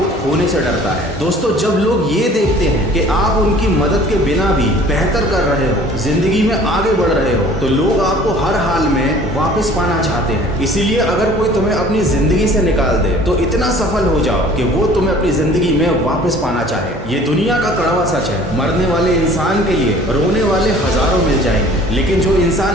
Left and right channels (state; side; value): normal; both; correlation 0.50